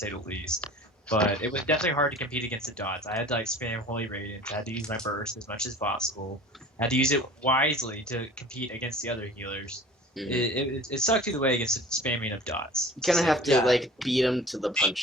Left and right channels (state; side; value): normal; both; correlation 0.43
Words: the least, but it was definitely hard to compete against the dots. I had to like spam Holy Radiance. I had to use my burst as much as possible. I had to use it wisely to compete against the other healers. Mhm. It sucked either way against the spamming of dots. You kind of have to Yeah. like beat them to the